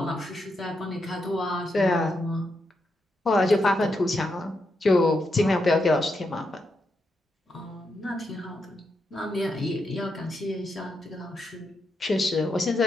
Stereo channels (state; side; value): normal; both; correlation 0.83